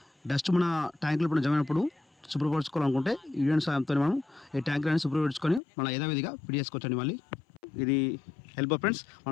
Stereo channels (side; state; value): right; drops out; at 5.6 s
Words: డస్ట్ మన ట్యాంకులు ఇప్పుడు జమైనప్పుడు శుభ్రపరచుకోవాలనుకుంటే యూనియన్ సాయంతో మనం ఈ ట్యాంకులను శుభ్రపరచుకొని మళ్ళీ యథావిధిగా ఫిట్ చేసుకోవచ్చండి. మళ్ళీ ఇది ఎల్బో ఫ్రెండ్స్.